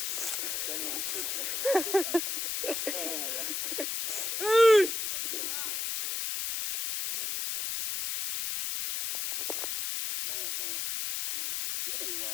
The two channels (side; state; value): left; noise; hiss, 1 dB below the sound